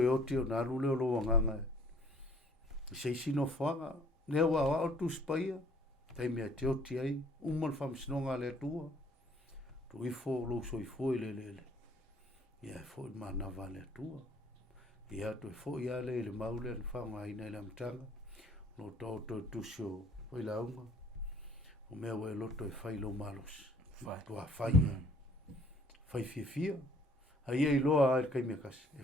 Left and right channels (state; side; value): normal; both; correlation 0.58